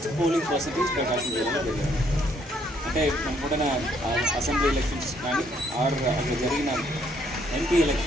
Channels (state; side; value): normal; both; correlation 0.68